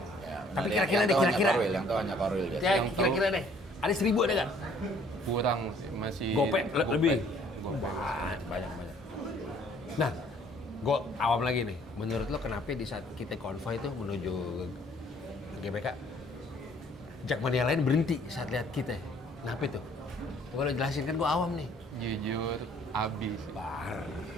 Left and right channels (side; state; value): both; normal; correlation 0.59